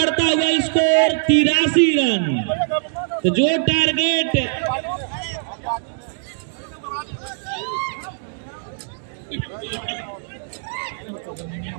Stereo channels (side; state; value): left; silent; digital silence